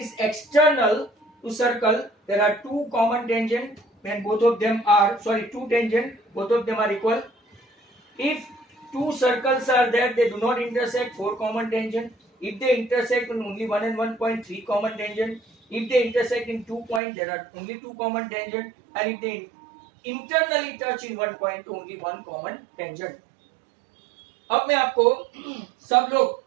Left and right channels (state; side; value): drops out; left; at 17.0 s